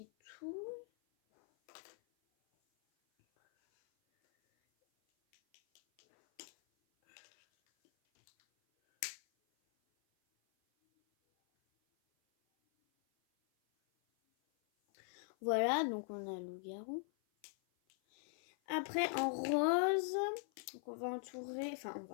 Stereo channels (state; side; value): silent; right; 50 dB below the other